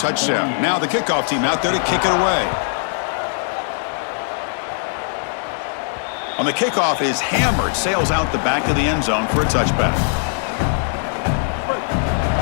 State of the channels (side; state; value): right; silent; digital silence